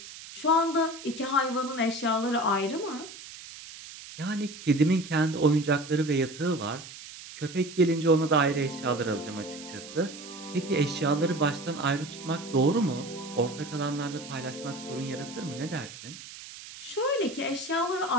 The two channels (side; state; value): right; noise; hiss, 14 dB below the sound